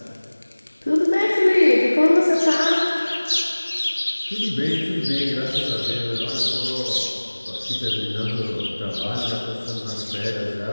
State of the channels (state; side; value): inverted; both; correlation -1.00